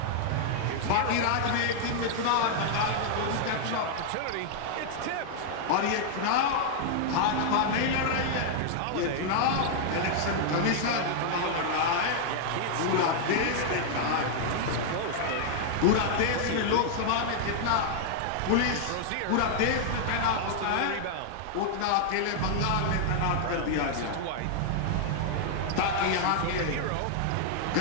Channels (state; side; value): different; both; correlation 0.00